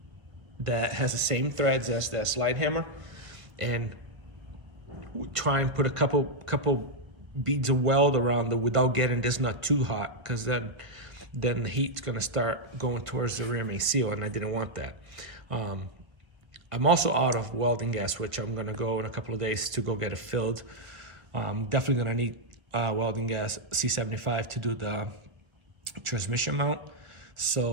that has the same threads as that slide hammer, and try and put a couple beads of weld around it without getting this nut too hot, because then the heat's going to start going towards the rear main seal, and I didn't want that. I'm also out of welding gas, which I'm gonna go in a couple of days to go get it filled. Definitely gonna need welding gas C75 to do the transmission mount.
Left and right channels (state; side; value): late; left; 1.5 ms